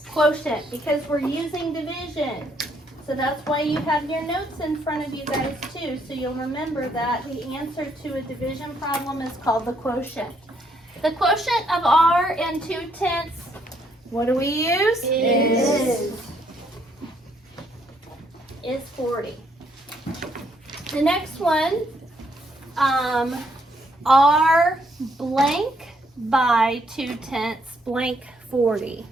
Quotient, because we're using division. So that's why you have your notes in front of you guys too, so you'll remember that the answer to a division problem is called the quotient. The quotient of R and 2/10, what do we use? Is 40. The next one, R blank by 2/10 blank 40.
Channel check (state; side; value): normal; both; correlation 0.71